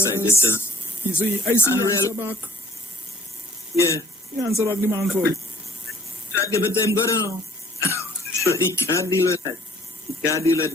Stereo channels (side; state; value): both; normal; correlation 0.56